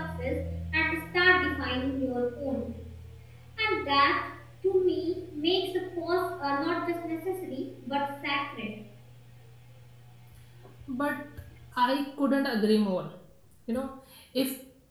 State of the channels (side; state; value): both; identical; correlation 1.00